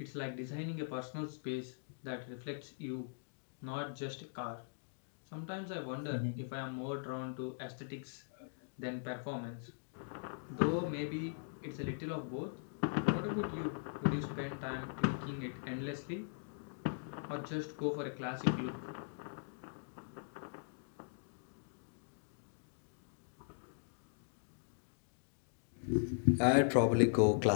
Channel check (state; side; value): silent; right; digital silence